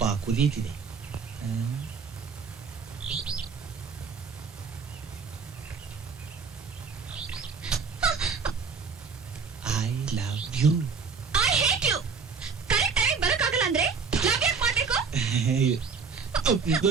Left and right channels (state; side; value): quieter; left; 5.4 dB